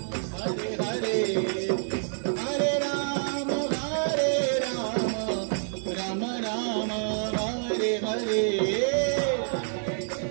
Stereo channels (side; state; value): left; silent; 60 dB below the other